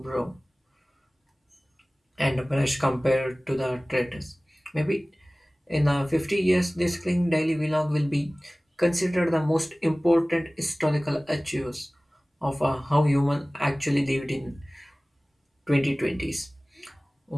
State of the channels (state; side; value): normal; both; correlation 0.98